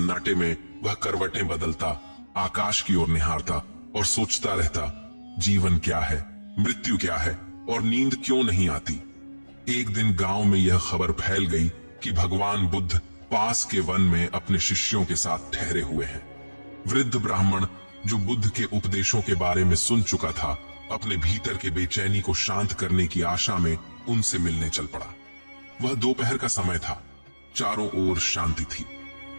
में वह करवटें बदलता, आकाश की ओर निहारता और सोचता रहता, जीवन क्या है, मृत्यु क्या है और नींद क्यों नहीं आती। एक दिन गांव में यह खबर फैल गई कि भगवान बुद्ध पास के वन में अपने शिष्यों के साथ ठहरे हुए हैं। वृद्ध ब्राह्मण जो बुद्ध के उपदेशों के बारे में सुन चुका था, अपने भीतर के बेचैनी को शांत करने की आशा में उनसे मिलने चल पड़ा। वह दोपहर का समय था, चारों ओर शांति थी।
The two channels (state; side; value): inverted; both; correlation -1.00